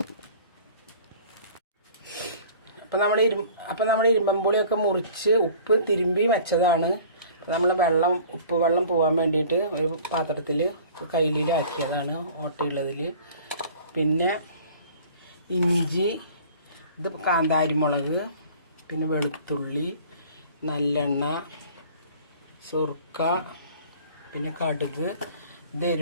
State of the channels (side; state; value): both; inverted; correlation -0.47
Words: അപ്പോൾ നമ്മുടെ ഇരുമ്പമ്പുളിയൊക്കെ മുറിച്ച് ഉപ്പ് തിരുമ്പി വെച്ചതാണ്. നമ്മൾ ഉപ്പ് വെള്ളം പോകാൻ വേണ്ടിയിട്ട് ഒരു പാത്രത്തിൽ കയ്യിലാക്കിയതാണ് ഓട്ടയുള്ളതിൽ. പിന്നെ ഇഞ്ചി, ഇത് കാന്താരിമുളക്, പിന്നെ വെളുത്തുള്ളി, നല്ലെണ്ണ, സുർക്ക, പിന്നെ കടുക്, ഇത്